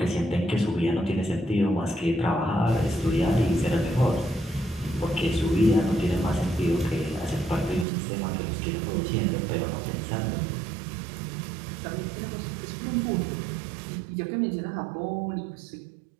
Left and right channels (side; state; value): left; drops out; at 7.9 s